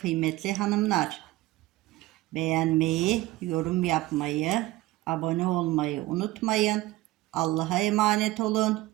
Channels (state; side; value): quieter; left; 17.7 dB